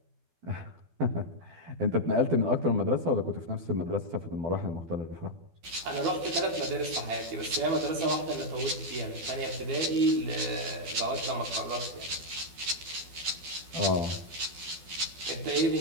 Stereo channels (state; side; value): late; left; 12 ms